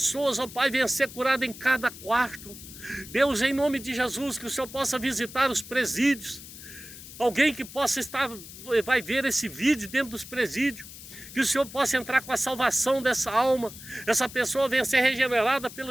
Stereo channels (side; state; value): left; noise; hiss, 15 dB below the sound